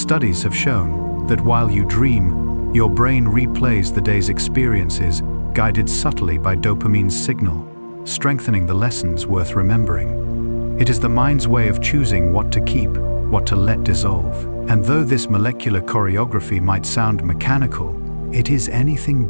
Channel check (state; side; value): inverted; both; correlation -1.00